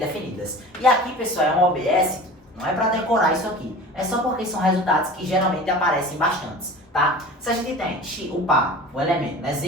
E aqui, pessoal, é um OBS, não é para decorar isso aqui, é só porque são resultados que geralmente aparecem bastantes, tá? Se a gente tem o par, o elemento, né,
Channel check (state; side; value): normal; both; correlation 0.38